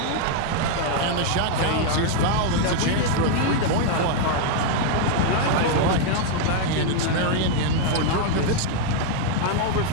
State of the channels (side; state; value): both; different; correlation 0.00